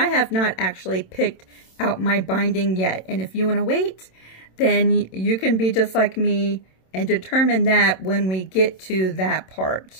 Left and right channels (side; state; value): right; late; 27 ms